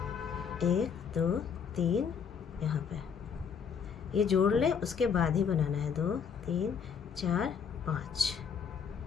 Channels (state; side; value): quieter; right; 6.8 dB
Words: 1 2 3 यहाँ पे ये जोड़ लें, उसके बाद ही बनाना है 2 3 4 5,